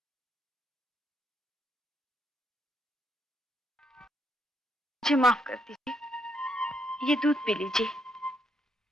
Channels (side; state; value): both; normal; correlation 0.76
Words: मुझे माफ कर दीजिए, ये दूध पी लीजिए।